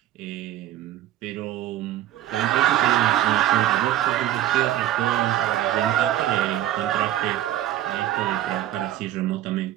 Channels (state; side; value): quieter; left; 13.1 dB